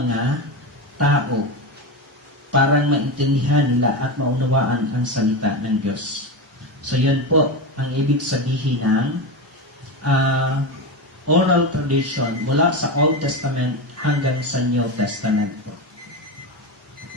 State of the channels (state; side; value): normal; both; correlation 0.17